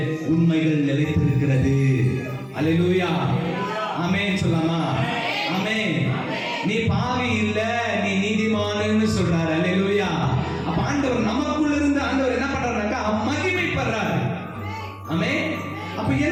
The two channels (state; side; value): identical; both; correlation 1.00